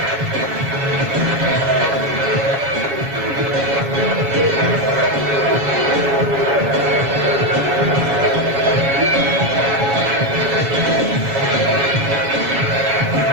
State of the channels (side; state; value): left; late; 7.1 ms